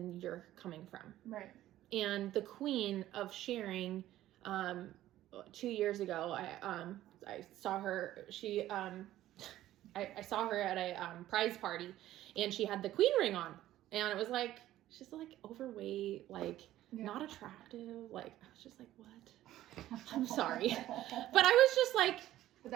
you're coming from. Right. And the queen of sharing, 2 years ago, I saw her, I saw her at a prize party and she had the queen ring on and it was like, she's like overweight, like not attractive. Like, I was just like, what? I'm sorry. But I was just like, but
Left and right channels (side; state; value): left; quieter; 14.0 dB